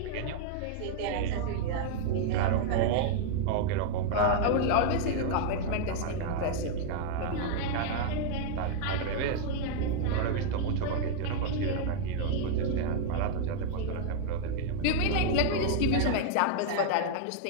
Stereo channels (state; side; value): different; both; correlation 0.00